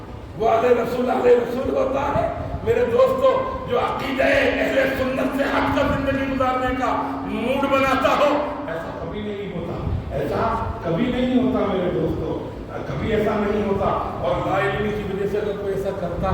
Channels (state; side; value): identical; both; correlation 1.00